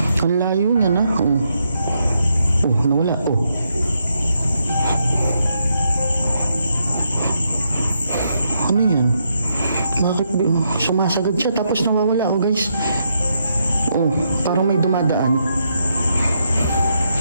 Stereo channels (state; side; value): inverted; both; correlation -0.79